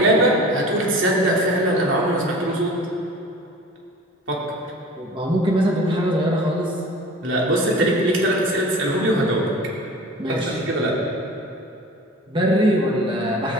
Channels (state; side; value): normal; both; correlation 0.40